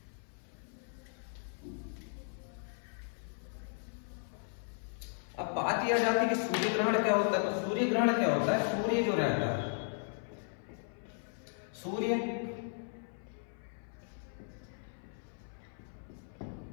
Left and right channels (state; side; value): silent; right; 54 dB below the other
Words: अब बात यह आ जाती है कि सूर्य ग्रहण क्या होता है। तो सूर्य ग्रहण क्या होता है, सूर्य जो रहता है, सूर्य